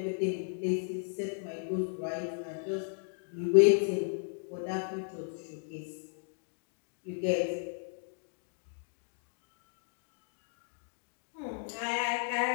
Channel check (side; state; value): right; silent; digital silence